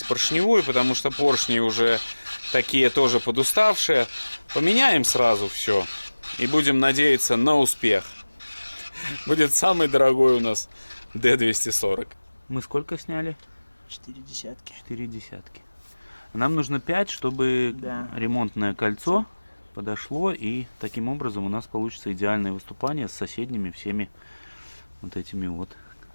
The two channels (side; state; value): both; inverted; correlation -1.00